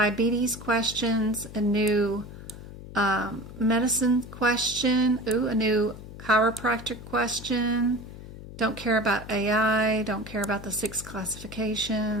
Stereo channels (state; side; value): noise; left; hum, 14 dB below the sound